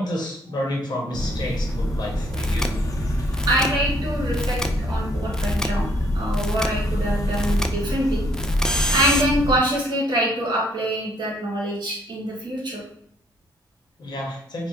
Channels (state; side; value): normal; both; correlation 0.65